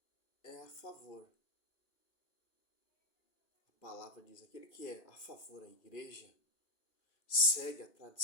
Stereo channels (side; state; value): right; late; 2.4 ms